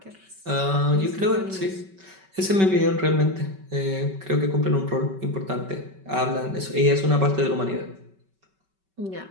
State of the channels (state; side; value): late; left; 5.2 ms